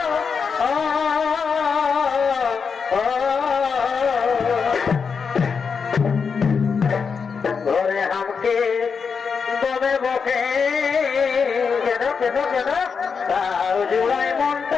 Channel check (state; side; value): quieter; right; 5.8 dB